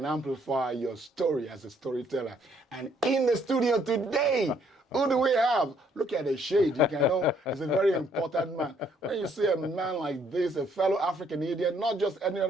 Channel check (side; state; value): both; normal; correlation 0.67